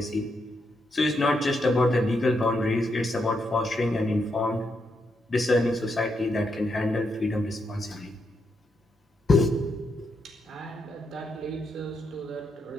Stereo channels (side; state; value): both; normal; correlation 0.81